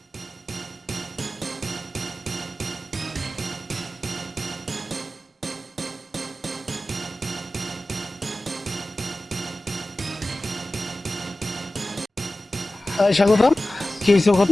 স্বাগতম, কি হয়েছে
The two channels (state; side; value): normal; both; correlation 0.96